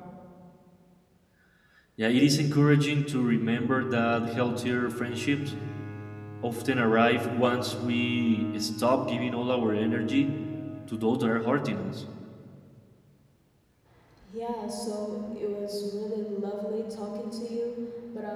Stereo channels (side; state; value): both; identical; correlation 1.00